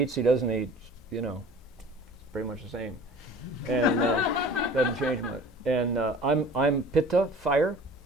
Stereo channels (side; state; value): both; normal; correlation 0.44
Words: eats, he doesn't eat, you know, it's pretty much the same, and doesn't change much. And I'm Pitta, fire,